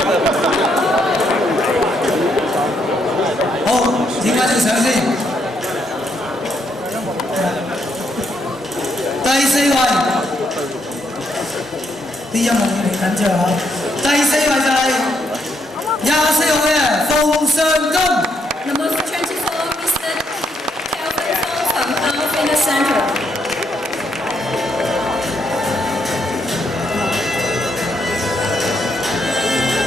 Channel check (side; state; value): both; normal; correlation 0.75